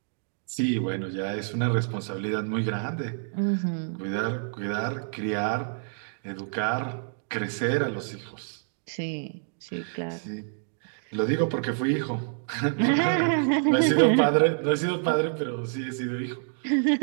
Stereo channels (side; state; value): left; silent; digital silence